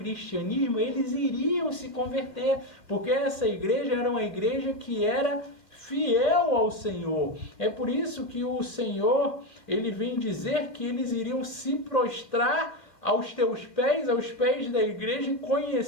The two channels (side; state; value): right; late; 2.3 ms